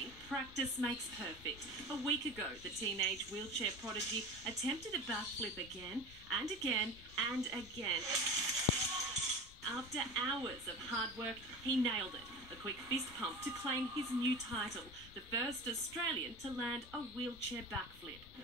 practice makes perfect. A week ago, the teenage wheelchair prodigy attempted a backflip again and again and again. After hours of hard work, he nailed it. A quick fist pump to claim his new title, the first Australian to land a wheelchair backflip.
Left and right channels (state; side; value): normal; both; correlation 0.32